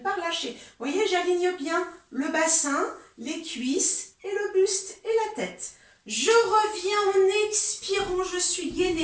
relâcher. Vous voyez, j'aligne bien le bassin, les cuisses, et le buste, et la tête. Je reviens en expirant, je suis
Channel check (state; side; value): identical; both; correlation 1.00